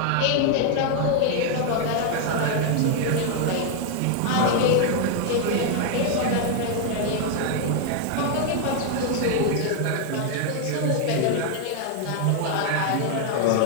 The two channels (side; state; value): both; different; correlation 0.00